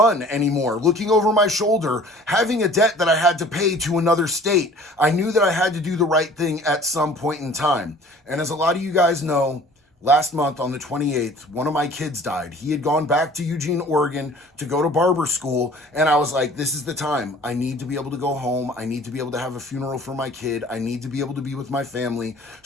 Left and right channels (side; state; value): both; normal; correlation 0.49